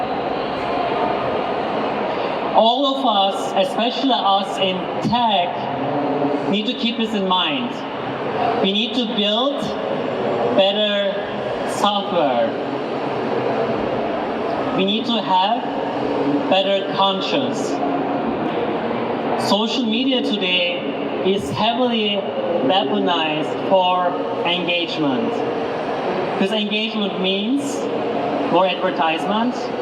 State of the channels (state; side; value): identical; both; correlation 1.00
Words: All of us, especially us in tech, need to keep this in mind. We need to build better software. We need to have better conscience. Social media today is heavily weaponized for engagement. Because engagement means more advertisement